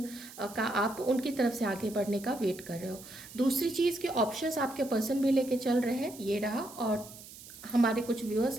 का आप उनकी तरफ से आगे बढ़ने का वेट कर रहे हो। दूसरी चीज़ के ऑप्शंस आपके पर्सन भी लेके चल रहे हैं, ये रहा। और हमारे कुछ व्यूअर्स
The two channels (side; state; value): right; noise; hiss, 17 dB below the sound